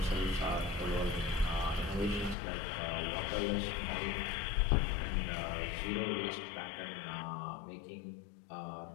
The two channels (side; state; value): right; drops out; at 2.4 s